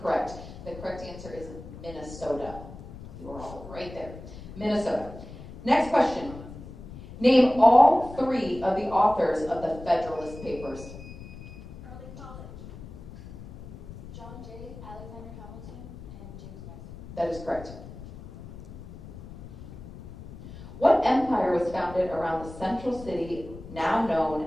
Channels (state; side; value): noise; left; rumble, 14 dB below the sound